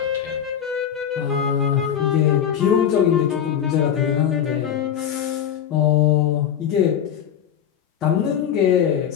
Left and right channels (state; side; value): quieter; right; 9.1 dB